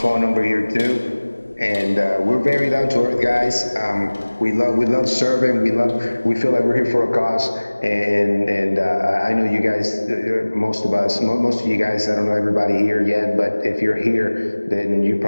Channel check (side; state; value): both; inverted; correlation -1.00